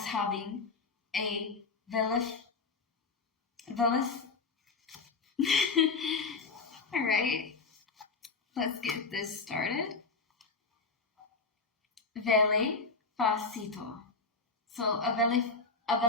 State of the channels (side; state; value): right; quieter; 4.3 dB